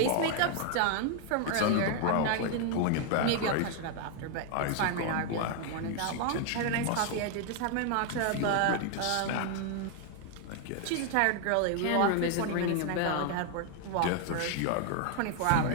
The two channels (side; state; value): both; different; correlation 0.00